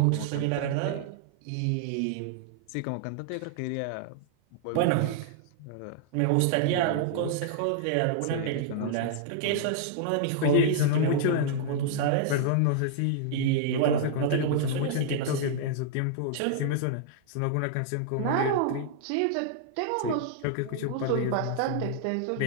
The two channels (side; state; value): both; different; correlation -0.01